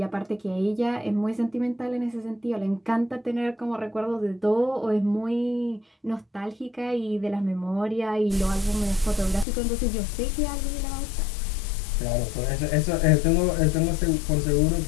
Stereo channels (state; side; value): drops out; right; at 9.5 s